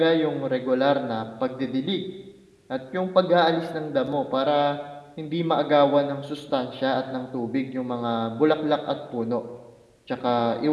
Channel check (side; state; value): both; identical; correlation 1.00